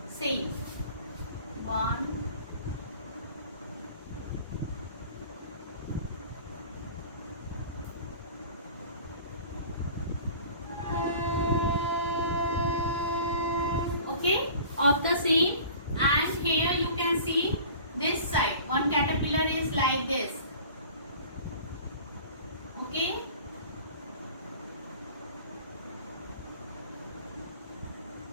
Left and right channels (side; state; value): both; inverted; correlation -0.44